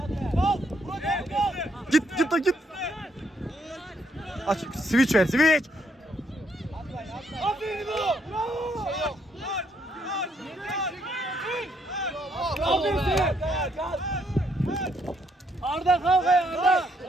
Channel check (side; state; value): both; normal; correlation 0.72